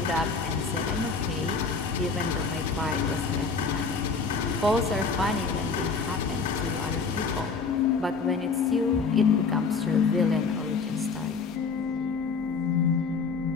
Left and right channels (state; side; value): quieter; right; 4.8 dB